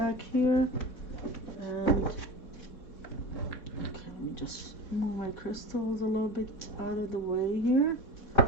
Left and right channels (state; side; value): late; right; 3.9 ms